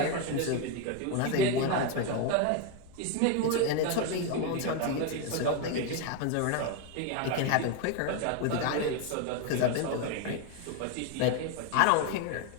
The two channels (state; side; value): different; both; correlation 0.02